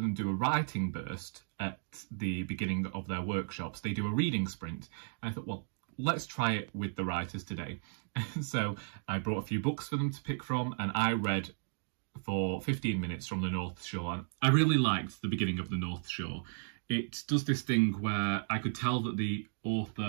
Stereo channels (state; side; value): silent; left; digital silence